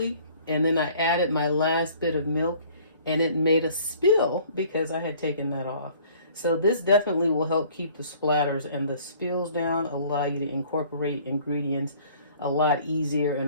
and then I added my last bit of milk and it made a spill because I had taken that off. So this definitely will help keep the splatters and the spills down, allow you to incorporate ingredients a lot easier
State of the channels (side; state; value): both; inverted; correlation -0.54